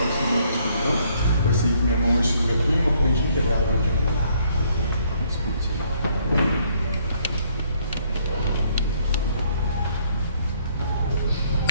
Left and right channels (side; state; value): both; inverted; correlation -0.66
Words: sem meu escuridão, pois sei que minha mão hoje sobre a tua e uma corrente inquebrável de amor. Espírito Santo.